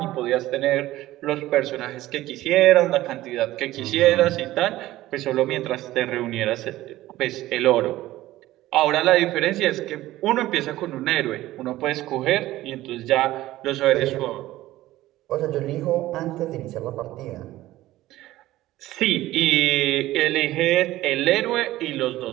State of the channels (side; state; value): left; quieter; 16.0 dB